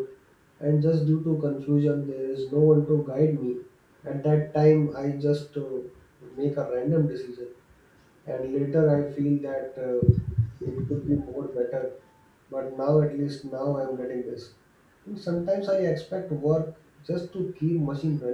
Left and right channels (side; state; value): both; identical; correlation 1.00